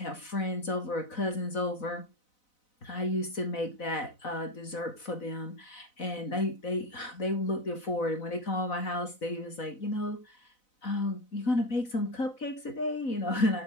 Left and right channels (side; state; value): right; late; 4.0 ms